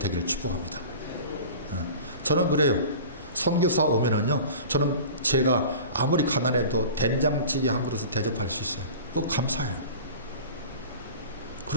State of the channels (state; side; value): inverted; both; correlation -0.38